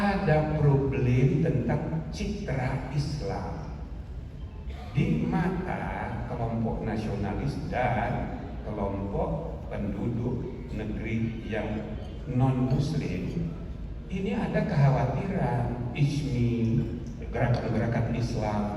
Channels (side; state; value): both; identical; correlation 1.00